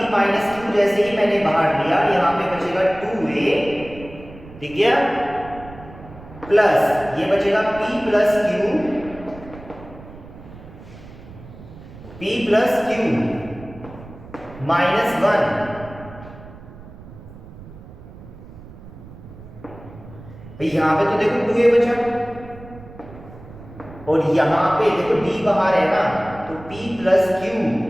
माइनस q, जैसे ही मैंने बाहर लिया यहां पे बचेगा 2a, ठीक है, प्लस ये बचेगा p प्लस q माइनस 1, भाई यहां पे तो देखो 2a बचा, और यहां पे देखो d बाहर है ना, तो p प्लस q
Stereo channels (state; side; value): noise; right; rumble, 17 dB below the sound